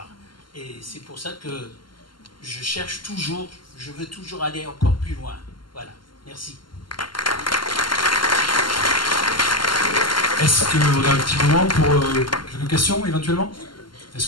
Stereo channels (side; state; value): right; late; 0.72 ms